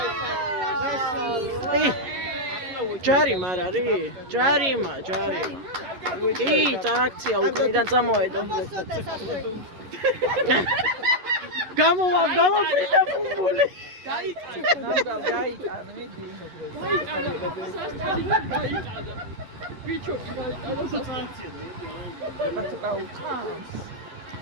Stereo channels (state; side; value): late; left; 11 ms